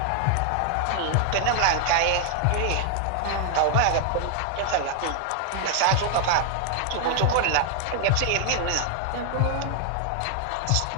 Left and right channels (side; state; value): both; different; correlation 0.00